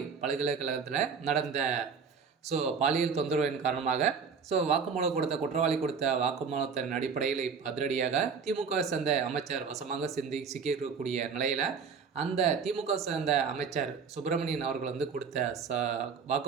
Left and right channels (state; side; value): quieter; left; 5.9 dB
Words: பல்கலைக்கழகத்தில் நடந்த பாலியல் தொந்தரவின் காரணமாக வாக்குமூலம் குற்றவாளி கொடுத்த வாக்குமூலத்தின் அடிப்படையில் அதிரடியாக திமுக சேர்ந்த அமைச்சர் வசமாக சிக்கியிருக்கக்கூடிய நிலையில் அந்த திமுக சேர்ந்த அமைச்சர் சுப்பிரமணியன் அவர்கள் கொடுத்த